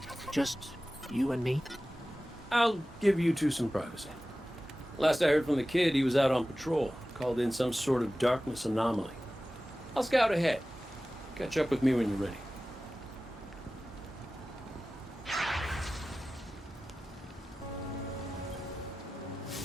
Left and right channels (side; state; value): both; normal; correlation 0.96